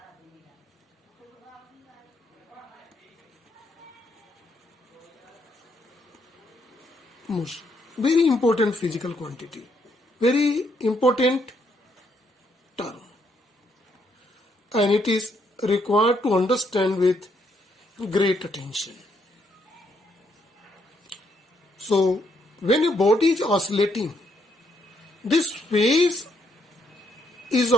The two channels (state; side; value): normal; both; correlation 0.73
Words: Very important physical quantity. Very important term. And it is required to understand with great attention. So, when a body is oscillating, this phase is